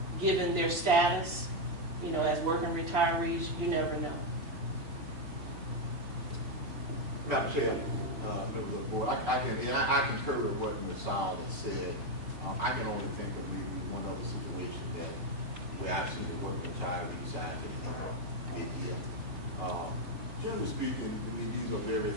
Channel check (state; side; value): late; left; 3.0 ms